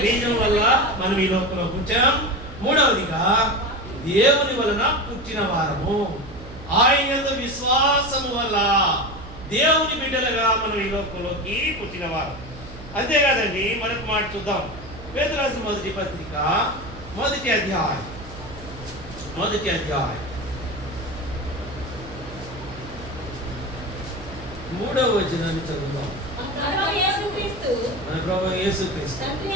బీజం వల్ల మనం ఈ లోకంలో పుట్టాం. మూడవదిగా దేవుని వలన పుట్టిన వారము, ఆయన యందు విశ్వాసము వల్ల దేవుని బిడ్డలుగా మనం ఈ లోకంలోకి పుట్టిన వారు. అంతేకాదండి, మరొక మాట చూద్దాం. పేతురు రాసిన మొదటి పత్రిక 1వ అధ్యాయం 3వ వచనాన్ని చదువుదాం. మన ప్రభువు యేసుక్రీస్తు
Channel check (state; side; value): noise; right; hum, 15 dB below the sound